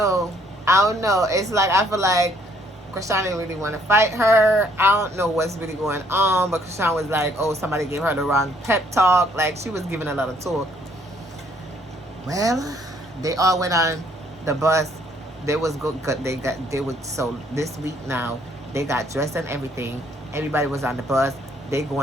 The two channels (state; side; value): normal; both; correlation 0.66